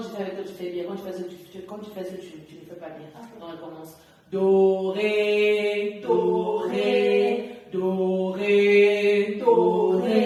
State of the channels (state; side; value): identical; both; correlation 1.00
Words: je fais avec toi, tu fais bien. Quand tu fais ça, tu ne fais pas bien. Donc, on commence. Do, ré, do, ré, do, ré, do,